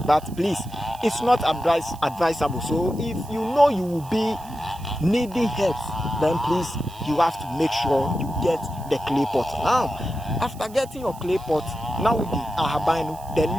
But please, it's not advisable. So if you know you will be needing help, then please, you have to make sure you get the clay pot. Now, after getting your clay pot, now with the ahabino, the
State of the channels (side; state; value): right; noise; hiss, 21 dB below the sound